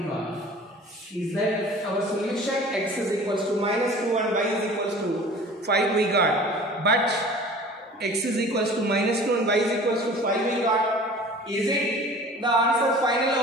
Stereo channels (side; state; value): both; normal; correlation 0.44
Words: Is that our solution? X is equals to minus 2 and y is equals to 5 we got. But x is equals to minus 2 and y is equals to 5 we got. Is it the answer final